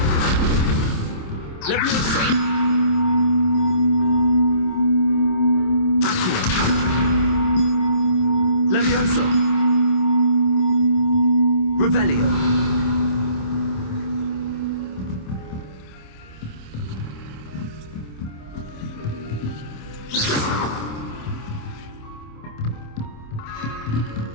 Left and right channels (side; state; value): right; late; 27 ms